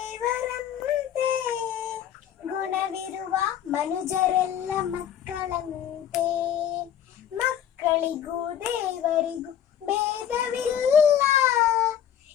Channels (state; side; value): quieter; right; 9.8 dB